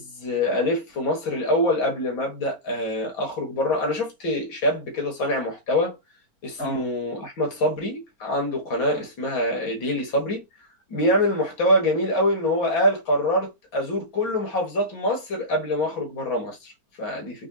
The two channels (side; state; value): right; late; 4.4 ms